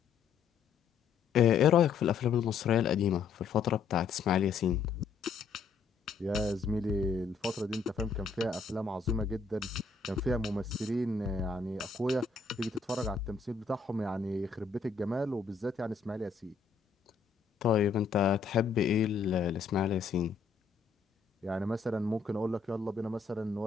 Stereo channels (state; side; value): quieter; right; 5.4 dB